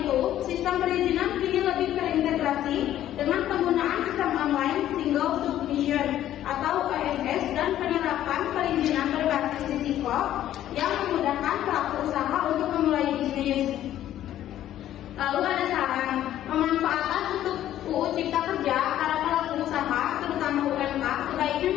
itu, sistem perizinan kini lebih terintegrasi dengan penggunaan sistem online single submission atau OSS dan penerapan perizinan berbasis risiko yang memudahkan pelaku usaha untuk memulai bisnis. Lalu ada saran, pemanfaatan untuk UU Cipta Kerja para pelaku usaha, terutama UMK, sebaiknya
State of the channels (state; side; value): quieter; right; 12.3 dB